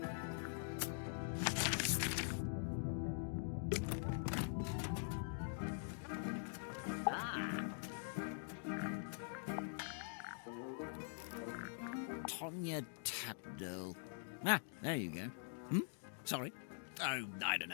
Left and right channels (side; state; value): right; silent; digital silence